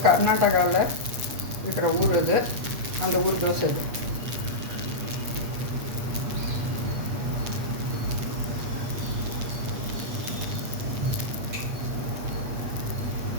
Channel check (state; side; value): late; left; 8.4 ms